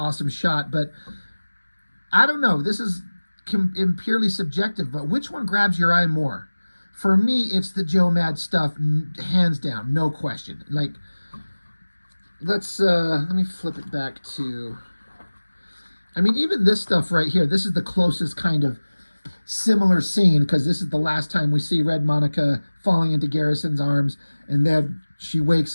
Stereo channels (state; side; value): inverted; both; correlation -1.00